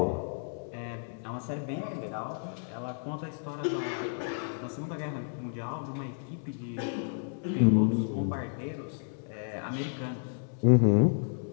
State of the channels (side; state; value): right; silent; digital silence